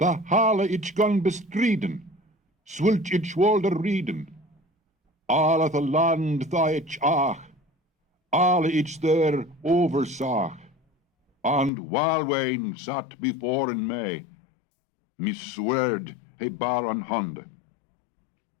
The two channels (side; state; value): right; drops out; at 11.7 s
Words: hale ich gan bestriden, swult ich wolde rieden, alle the land da ich ach, alle ich there oversag, and Walwain sat before in me, me swerd he bar an hand.